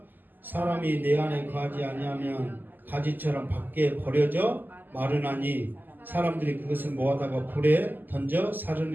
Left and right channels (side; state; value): left; late; 0.088 ms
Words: 사람이 내 안에 거하지 아니하면 가지처럼 밖에 버려져 마르나니 사람들이 그것을 모아다가 불에 던져